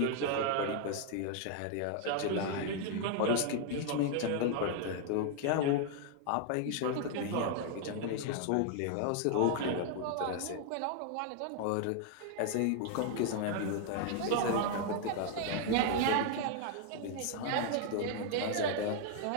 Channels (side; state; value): both; different; correlation 0.00